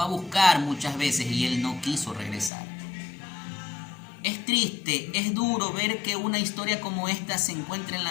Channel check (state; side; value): drops out; right; at 2.5 s